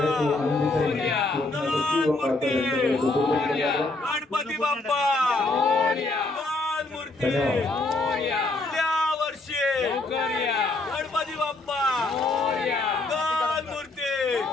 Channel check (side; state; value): right; quieter; 3.1 dB